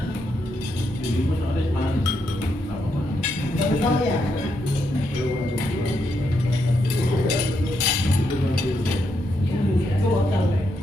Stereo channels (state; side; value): normal; both; correlation 0.80